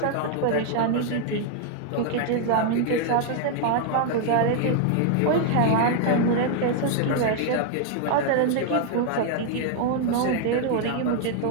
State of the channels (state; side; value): different; both; correlation 0.00